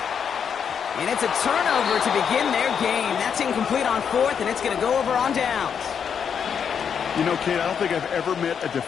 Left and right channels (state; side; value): quieter; right; 7.3 dB